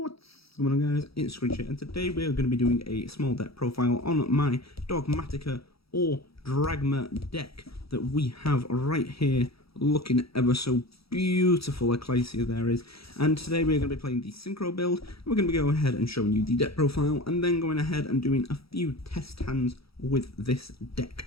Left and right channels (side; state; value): right; late; 0.76 ms